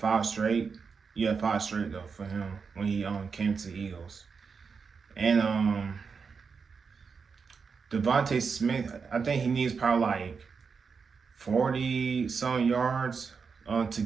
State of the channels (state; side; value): quieter; left; 5.5 dB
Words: straight. Yeah, 5 straight though for him when he came to the Eagles. And Devontae Smith, I think he needs probably like 40 some yards to